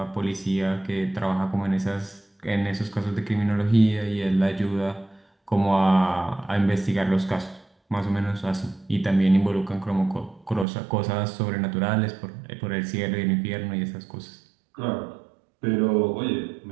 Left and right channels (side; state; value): left; drops out; at 10.7 s